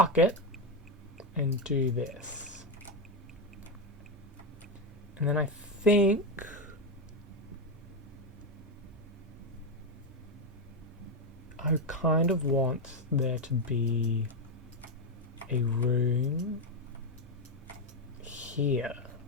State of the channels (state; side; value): normal; both; correlation 0.08